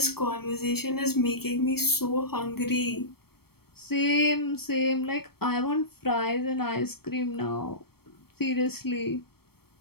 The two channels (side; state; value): right; late; 0.95 ms